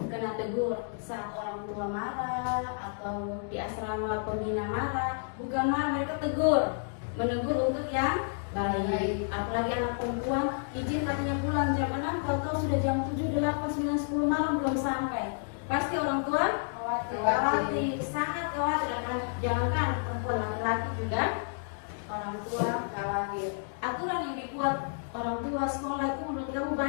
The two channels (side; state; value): right; silent; digital silence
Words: tegur saat orang tua marah atau di asrama pembina marah. Bukan marah, mereka tegur, menegur untuk yang baik. Apalagi anak perempuan izin katanya pulang jam 6, kalau kau sudah jam 7, 8, 9, 10 malam belum sampai, pasti orang tua khawatir, sangat khawatir. Jangankan perempuan, laki-laki juga orang tua khawatir. Aturan yang dibuat orang tua sekolah itu menurut kamu